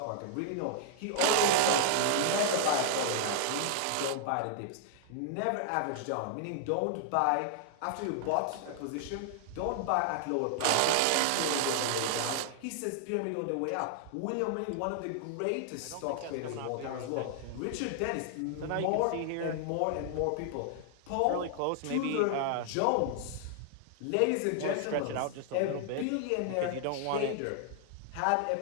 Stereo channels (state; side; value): different; both; correlation -0.01